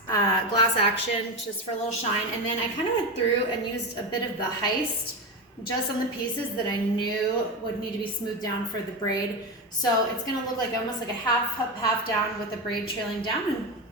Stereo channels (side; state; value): both; normal; correlation 0.17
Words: action just for a little shine, and then I kind of went through and used a bit of the heist just on the pieces that I knew would need to be smoothed down for the braid. So it's gonna look like almost like a half up, half down with the braid trailing down, and